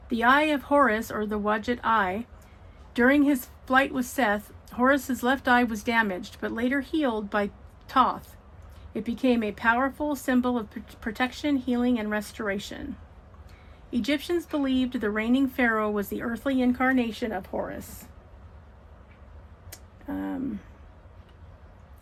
The eye of Horus, or the Wadjet eye, during his flight with Seth, Horus's left eye was damaged, but later healed by Thoth. It became a powerful symbol of protection, healing, and restoration. Egyptians believed the reigning pharaoh was the earthly incarnation of Horus.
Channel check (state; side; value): identical; both; correlation 1.00